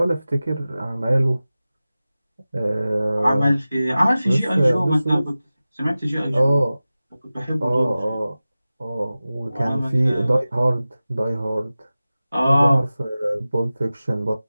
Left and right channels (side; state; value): both; inverted; correlation -0.96